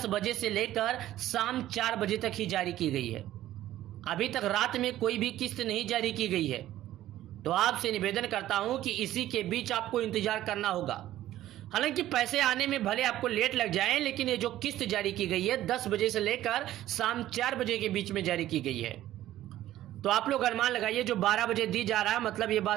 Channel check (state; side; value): quieter; left; 13.8 dB